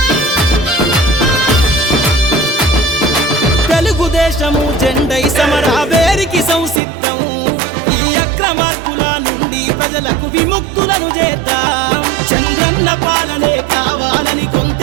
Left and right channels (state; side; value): drops out; left; at 6.8 s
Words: తెలుగుదేశము జెండై సమరావేరికి సంసిద్ధం ఈ అక్రమార్కుల నుండి ప్రజలకు విముక్తులను చేద్దాం చంద్రన్న పాలనే కావాలని